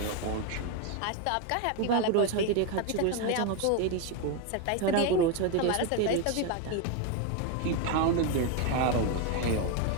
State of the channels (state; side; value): different; both; correlation 0.02